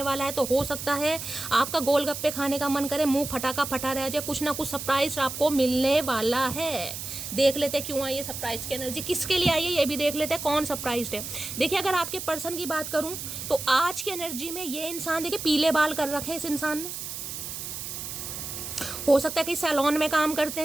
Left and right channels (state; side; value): noise; right; hiss, 7 dB below the sound